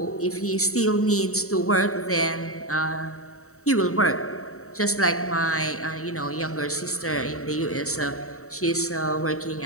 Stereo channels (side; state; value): right; late; 0.64 ms